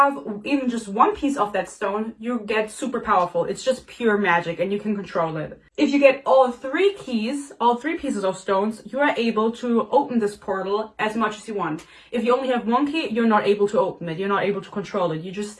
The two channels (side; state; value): both; identical; correlation 1.00